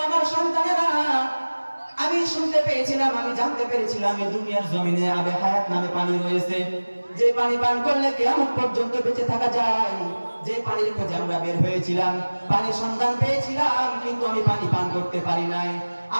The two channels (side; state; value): both; inverted; correlation -1.00